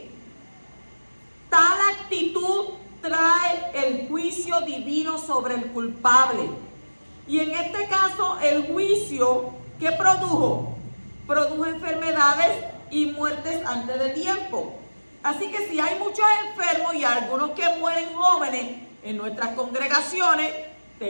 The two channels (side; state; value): both; inverted; correlation -1.00